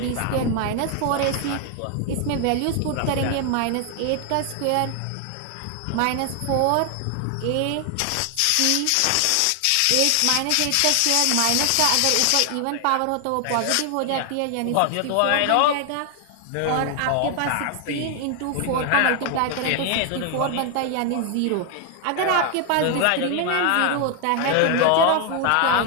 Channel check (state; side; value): different; both; correlation 0.00